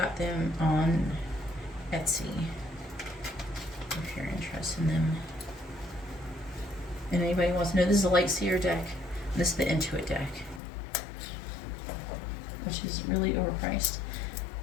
them on Etsy. If you're interested in them. And anybody wants to know, this is a Light Seer deck. And this is the Intuit deck. Which is really overpriced.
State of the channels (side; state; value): right; drops out; at 10.6 s